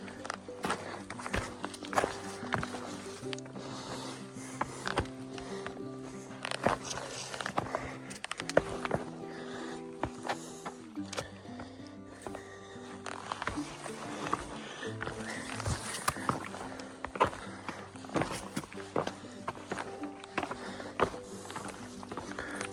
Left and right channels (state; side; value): identical; both; correlation 1.00